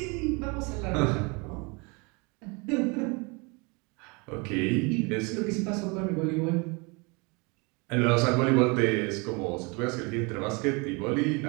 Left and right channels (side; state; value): left; quieter; 29.5 dB